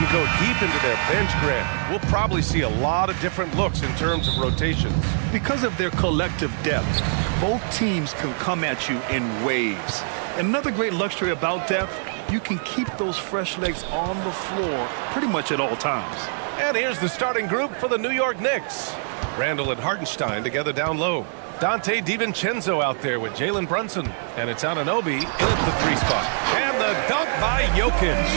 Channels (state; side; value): silent; left; digital silence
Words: go deep into their bench, Grant. We'll probably see a lot of different looks in terms of rotations. Because of their collective depth, both teams can come at you in waves. And another great luxury about depth, you can keep those fresh legs on the floor pretty much at all times. And here's the starting group for the New York Knicks. Randall and Hartenstein together down low. Dante DiVincenzo out there with Jalen Brunson. And it's Anunoby in at the 3 spot. And the dunk by Jokic.